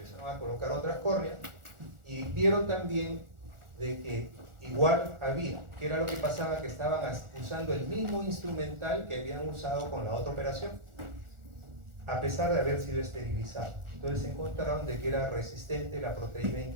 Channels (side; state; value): left; late; 1.4 ms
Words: a colocar otras córneas y vieron también de que igual había, que era lo que pasaba, que estaban usando el mismo instrumental que habían usado con la otra operación, a pesar de haber sido esterilizado. Entonces se encontraron de que era resistente la proteína